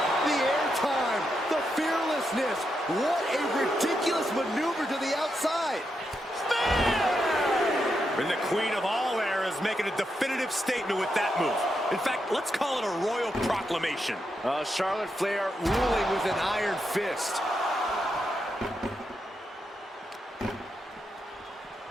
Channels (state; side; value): normal; both; correlation 0.84